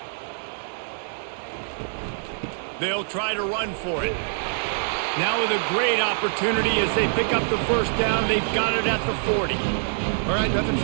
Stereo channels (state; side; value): silent; left; digital silence